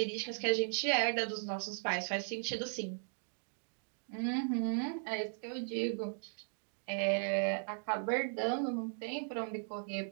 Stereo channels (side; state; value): left; silent; digital silence